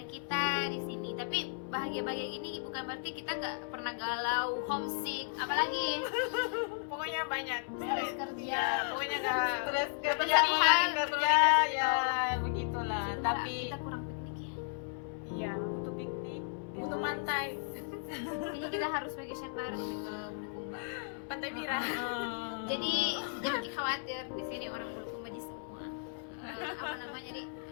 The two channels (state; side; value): silent; right; 55 dB below the other